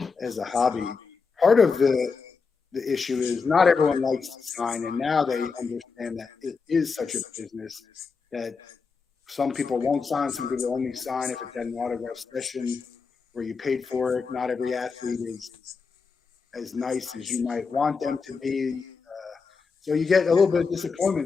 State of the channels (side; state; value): right; quieter; 5.0 dB